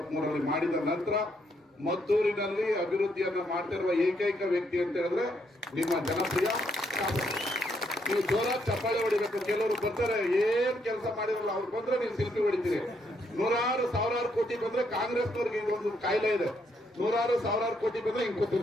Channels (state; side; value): normal; both; correlation 0.74